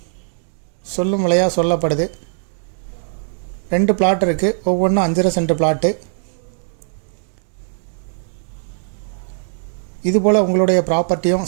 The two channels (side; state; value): left; silent; digital silence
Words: சொல்லும் விலையாக சொல்லப்படுது. 2 பிளாட் இருக்குது, ஒவ்வொன்றும் 5.5 சென்ட் பிளாட்டு. இதுபோல் உங்களுடைய